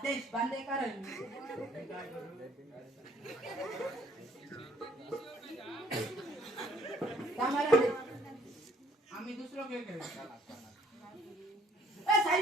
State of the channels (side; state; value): both; normal; correlation 0.60